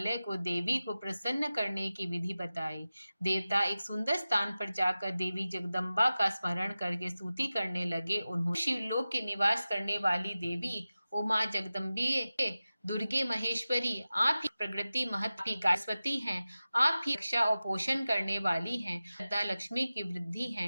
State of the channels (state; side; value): inverted; both; correlation -0.96